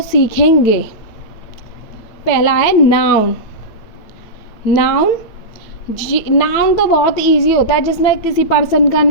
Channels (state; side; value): late; right; 9.0 ms